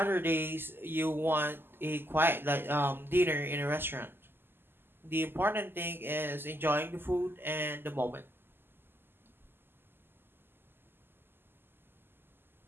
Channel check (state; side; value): late; left; 0.10 ms